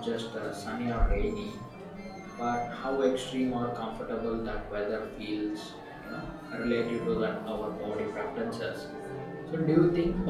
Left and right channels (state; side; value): identical; both; correlation 1.00